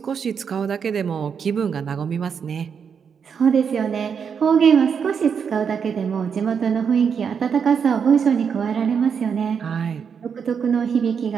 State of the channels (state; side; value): quieter; left; 6.8 dB